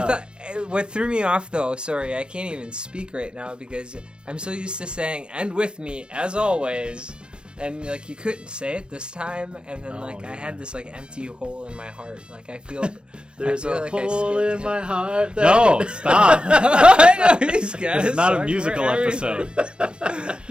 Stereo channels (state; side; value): late; left; 0.052 ms